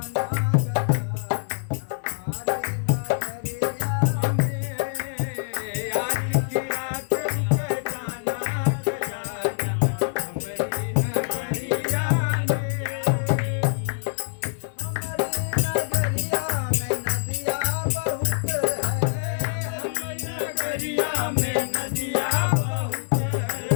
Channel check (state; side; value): silent; right; 62 dB below the other